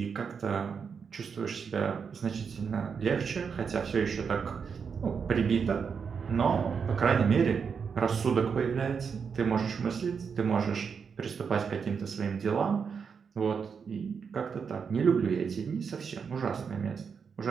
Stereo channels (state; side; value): quieter; left; 6.2 dB